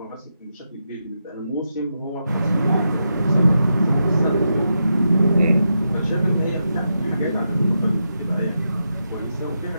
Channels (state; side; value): inverted; both; correlation -0.86